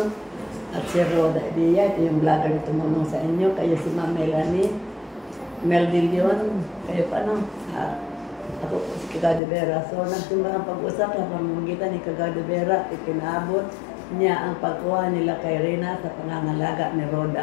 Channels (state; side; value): drops out; right; at 9.4 s